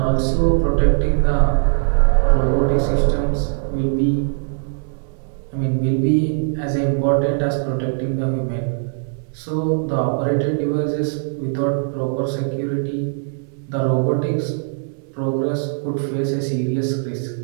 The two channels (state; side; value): silent; left; digital silence